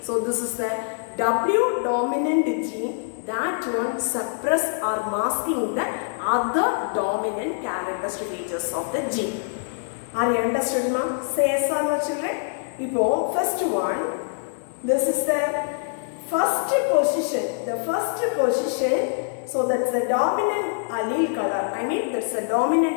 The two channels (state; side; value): silent; right; digital silence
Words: so this is the W dominant gene, that one suppress or masking the other dominant characteristic features of the gene. Are you understood now? Say yes or no, children? Now, first one, this is the first position. The first position, so that's the dominant allele color. That's the